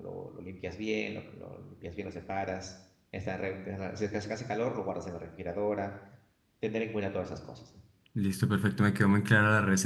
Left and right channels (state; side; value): identical; both; correlation 1.00